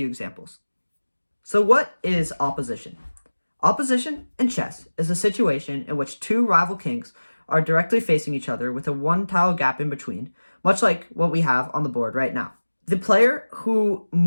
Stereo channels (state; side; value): inverted; both; correlation -1.00